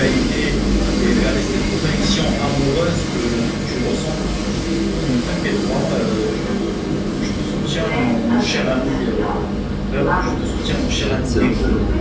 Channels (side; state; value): both; identical; correlation 1.00